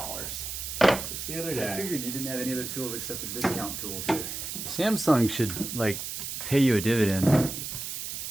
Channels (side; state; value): right; noise; hiss, 6 dB below the sound